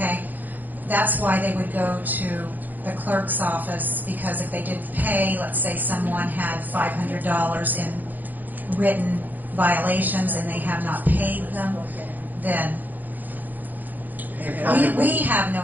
that's why they would go to the clerk's office, because if they didn't pay, let's say someone had $500 in written violations and they have not paid them, then we have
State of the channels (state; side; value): late; left; 0.086 ms